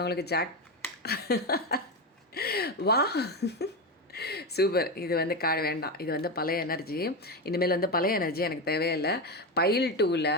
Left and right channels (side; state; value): both; normal; correlation 0.15